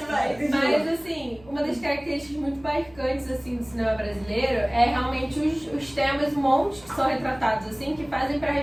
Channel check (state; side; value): noise; right; hum, 25 dB below the sound